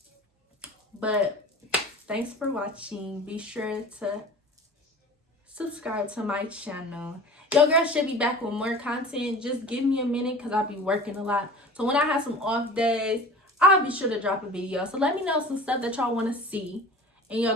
But thanks for watching. Be sure to subscribe to my channel. Your girl should be back with more content. Just give me a minute, because I'll be working a lot. So when I have some off days, I'll be sure to drop a video. So let me know some stuff that y'all want to see, and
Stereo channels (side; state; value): both; normal; correlation 0.40